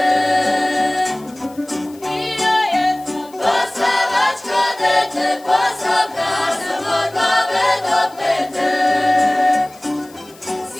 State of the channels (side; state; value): left; noise; hiss, 25 dB below the sound